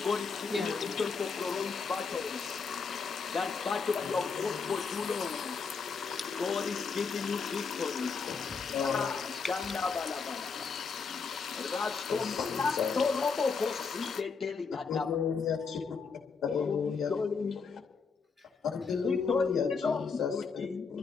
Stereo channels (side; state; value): right; quieter; 5.2 dB